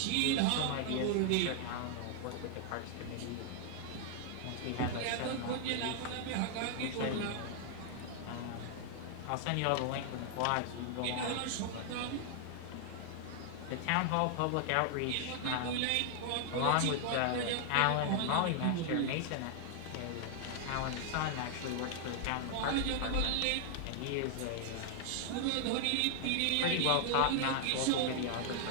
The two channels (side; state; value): both; different; correlation 0.00